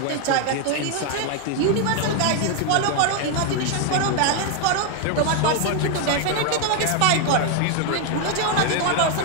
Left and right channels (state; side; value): different; both; correlation 0.01